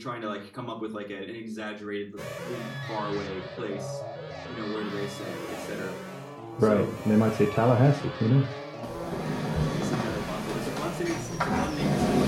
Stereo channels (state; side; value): identical; both; correlation 1.00